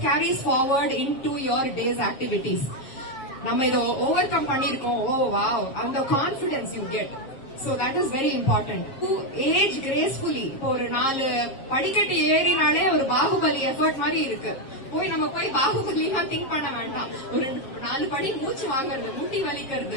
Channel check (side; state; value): right; late; 7.4 ms